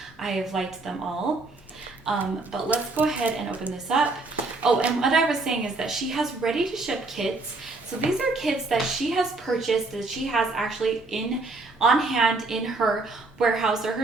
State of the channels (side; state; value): left; quieter; 3.3 dB